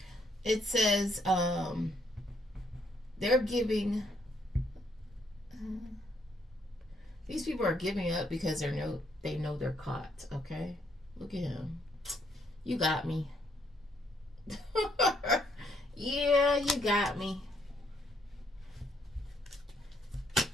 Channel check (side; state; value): both; normal; correlation 0.72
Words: it says they're giving. These people are giving up because they know they're caught. Okay, look at him. You got me. Yeah, you got me.